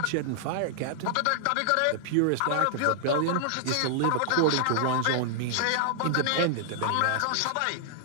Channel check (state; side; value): different; both; correlation -0.01